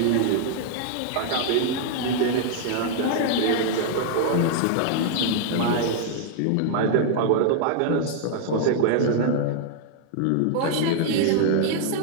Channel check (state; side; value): different; both; correlation -0.01